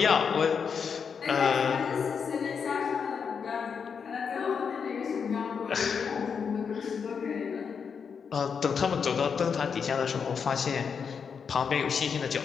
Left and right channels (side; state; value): right; quieter; 6.4 dB